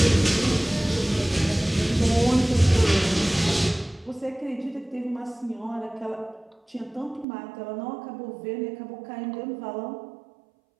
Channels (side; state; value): left; drops out; at 7.2 s